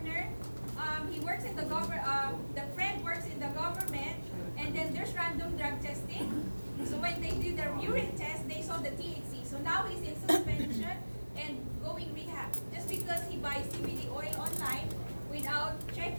He works in the government. The friend works in the government, and then there's random drug testing. So when they did their urine test, they saw the THC. So now he's in suspension and going rehab just because he buys CBD oil online without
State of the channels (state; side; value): inverted; both; correlation -1.00